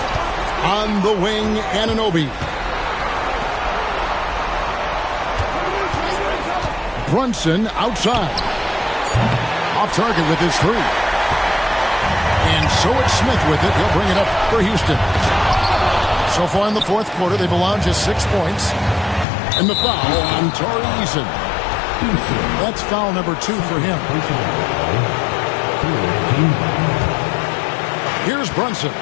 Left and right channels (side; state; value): right; drops out; at 19.2 s